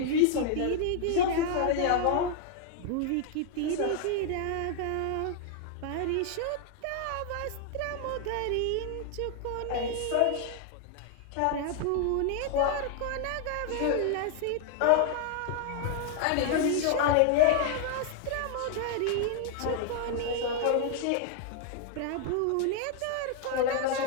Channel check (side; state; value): both; different; correlation 0.00